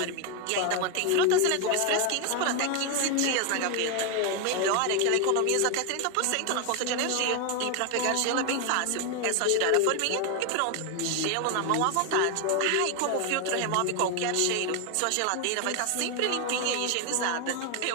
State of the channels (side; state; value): both; different; correlation 0.01